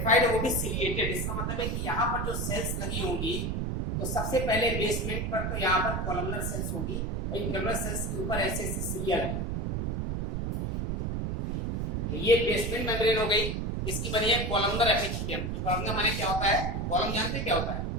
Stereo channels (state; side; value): noise; right; rumble, 1 dB below the sound